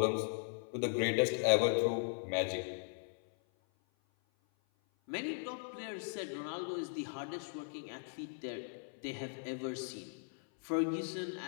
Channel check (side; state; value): right; silent; 52 dB below the other